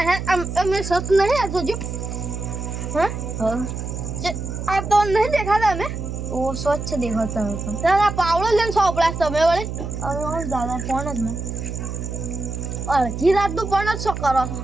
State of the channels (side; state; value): right; noise; hum, 6 dB below the sound